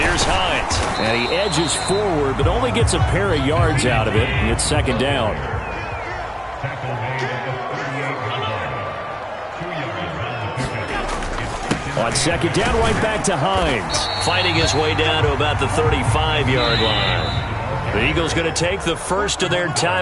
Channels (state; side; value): identical; both; correlation 1.00